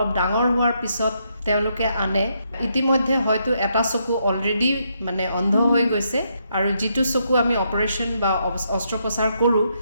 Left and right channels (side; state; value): both; inverted; correlation -0.77